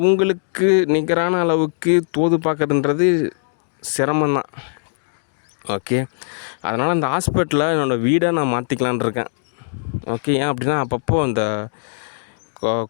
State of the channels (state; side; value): silent; right; digital silence